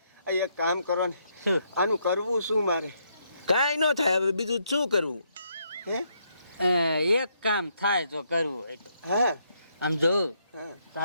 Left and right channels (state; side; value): inverted; both; correlation -0.75